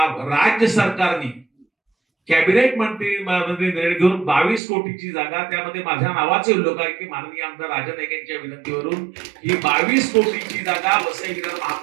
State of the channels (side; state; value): left; drops out; at 4.6 s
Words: राज्य सरकारने कॅबिनेट मंत्री निर्णय घेऊन 22 कोटीची जागा, त्यामध्ये माझ्या नावाचे उल्लेख आहे की माननीय आमदार राजा नाईक यांच्या विनंतीवरून ही 22 कोटीची जागा वसई विरार